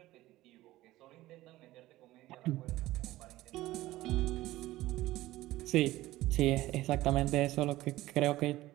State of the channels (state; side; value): quieter; left; 16.8 dB